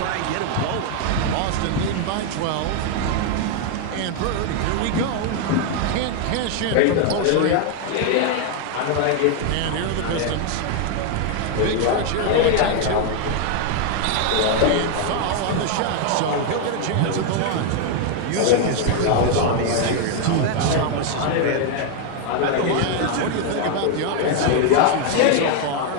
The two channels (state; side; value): different; both; correlation 0.00